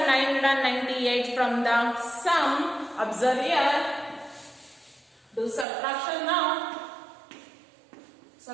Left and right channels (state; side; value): drops out; left; at 5.7 s